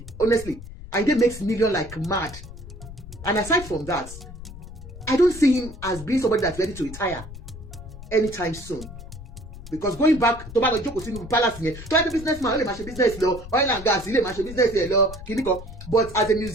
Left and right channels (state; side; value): noise; left; rumble, 13 dB below the sound